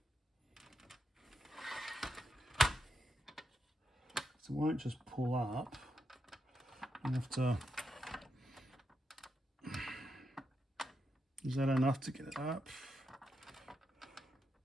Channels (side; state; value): both; normal; correlation 0.84